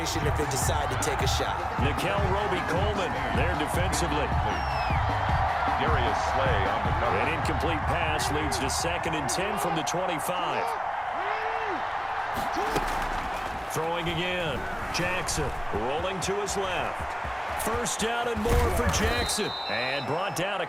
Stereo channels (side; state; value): both; identical; correlation 1.00